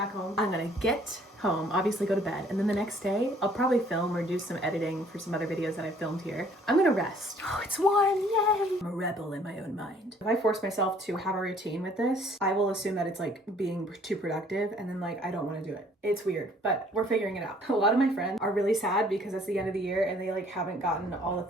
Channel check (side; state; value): both; normal; correlation 0.59